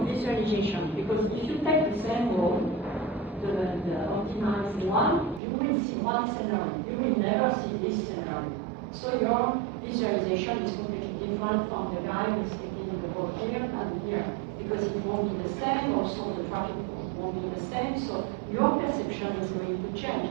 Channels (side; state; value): left; drops out; at 5.4 s